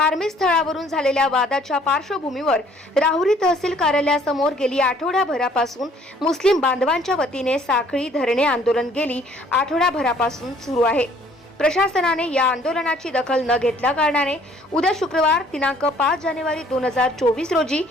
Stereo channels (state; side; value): normal; both; correlation 0.59